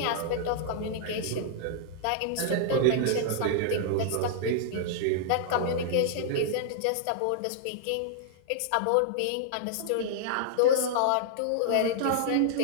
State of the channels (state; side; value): different; both; correlation -0.01